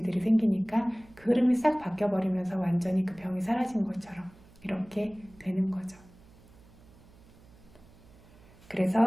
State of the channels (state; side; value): noise; right; hum, 25 dB below the sound